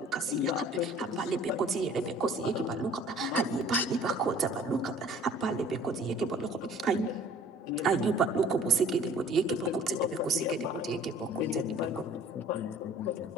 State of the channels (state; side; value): normal; both; correlation 0.51